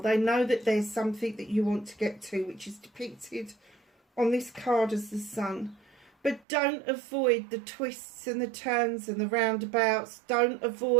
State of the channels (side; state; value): left; drops out; at 6.5 s